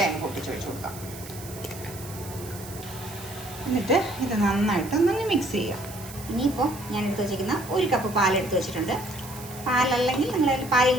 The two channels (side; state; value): right; noise; hiss, 15 dB below the sound